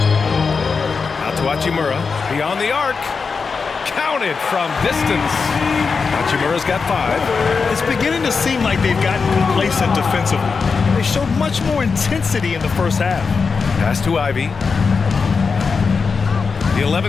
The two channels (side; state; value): right; quieter; 5.0 dB